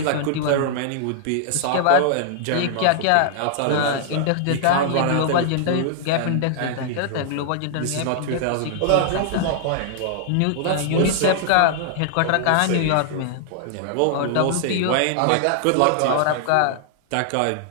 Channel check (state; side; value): different; both; correlation -0.01